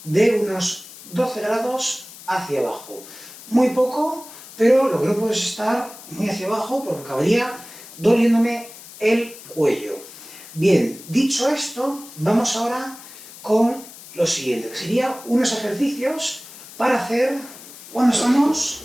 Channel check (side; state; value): left; noise; hiss, 17 dB below the sound